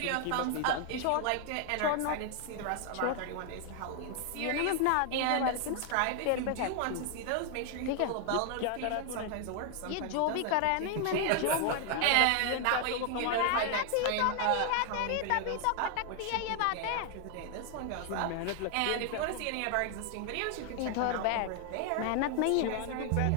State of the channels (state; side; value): different; both; correlation 0.00